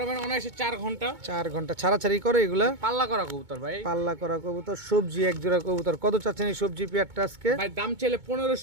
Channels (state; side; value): late; left; 2.2 ms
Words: অনায়াসে 4 ঘন্টা। 4 ঘন্টা ছাড়াছাড়ি করে এগুলা। পাল্লা করা কবুতর ভাই। পাল্লা করা কবুতর, সবজি এক জোড়া কবুতর। কত চাচ্ছেন এই সবজি পেয়ারটা আজকে? ভাই দাম চাইলে